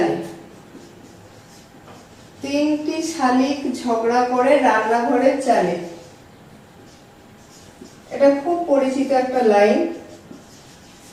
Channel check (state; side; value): identical; both; correlation 1.00